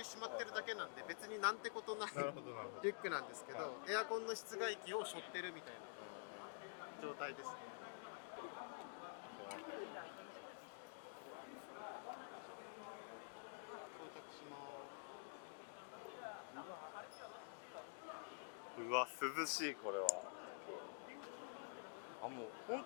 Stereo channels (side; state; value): right; silent; digital silence